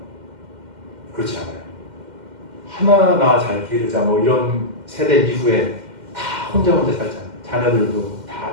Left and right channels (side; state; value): left; late; 2.1 ms